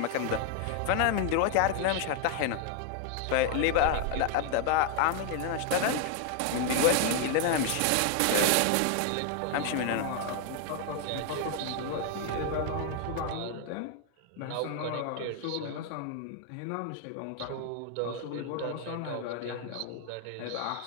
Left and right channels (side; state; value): both; different; correlation 0.00